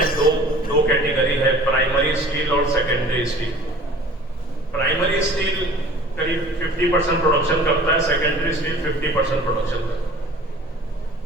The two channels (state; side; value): normal; both; correlation 0.46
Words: दो कैटेगरी है, प्राइमरी स्टील और सेकेंडरी स्टील। प्राइमरी स्टील करीब 50% प्रोडक्शन करता है, सेकेंडरी स्टील 50% प्रोडक्शन करता है।